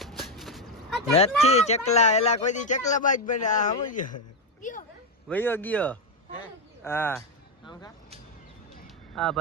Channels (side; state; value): both; normal; correlation 0.06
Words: નથી ચકલા એલા કોઈ દી ચકલા બાજ બને આ સમજો વયો ગયો હા હા